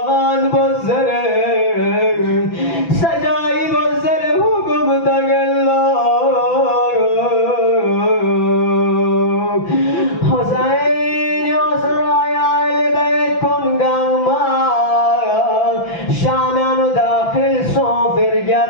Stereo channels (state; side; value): late; right; 6.0 ms